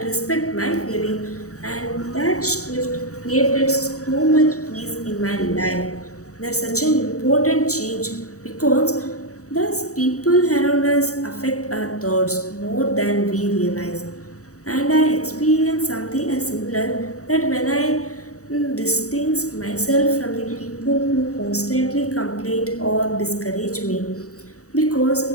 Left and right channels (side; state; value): right; late; 0.65 ms